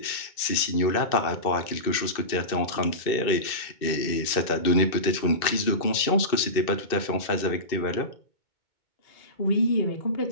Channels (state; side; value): late; right; 2.6 ms